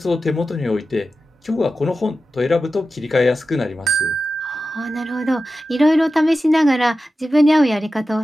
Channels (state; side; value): normal; both; correlation 0.93